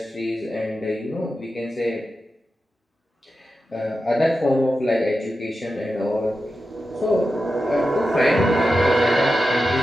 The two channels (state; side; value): normal; both; correlation 0.91